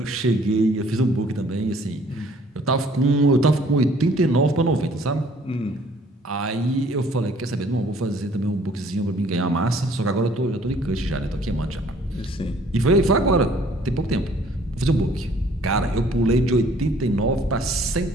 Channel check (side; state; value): both; normal; correlation 0.58